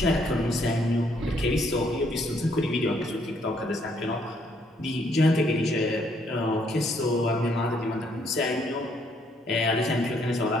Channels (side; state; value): both; normal; correlation 0.69